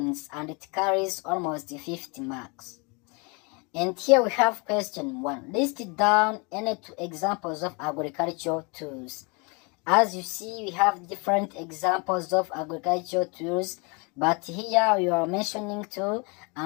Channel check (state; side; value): quieter; right; 30.7 dB